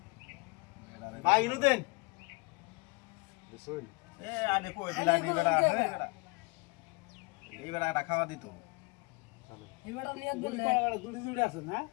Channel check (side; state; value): right; quieter; 27.6 dB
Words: ভাই ইনু দেন বুঝুন এ আনে কই দিলা নি বেটা এই বেটা এটা খাওয়া দিত চলো এবারে নিয়ে দিলে দুটি দুটি আছে না